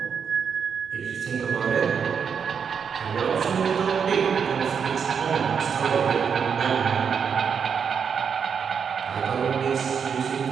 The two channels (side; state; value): left; quieter; 6.8 dB